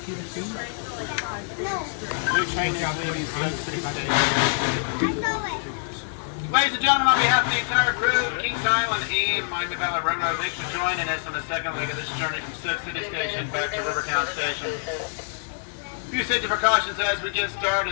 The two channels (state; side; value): silent; right; digital silence